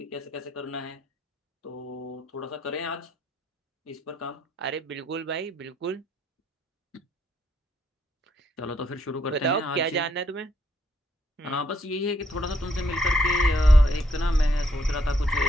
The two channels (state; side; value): normal; both; correlation 0.73